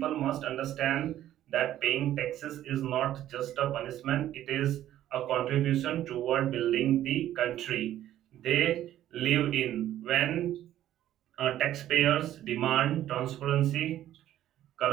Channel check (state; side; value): quieter; left; 12.6 dB